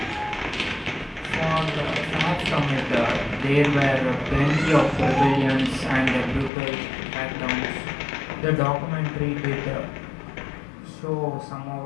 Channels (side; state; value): right; drops out; at 6.5 s